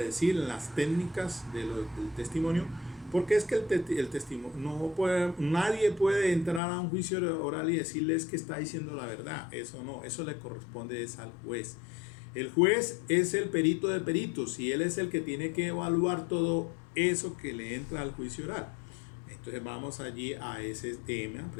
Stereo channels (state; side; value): drops out; right; at 6.6 s